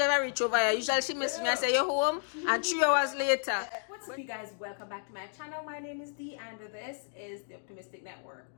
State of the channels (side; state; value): right; silent; digital silence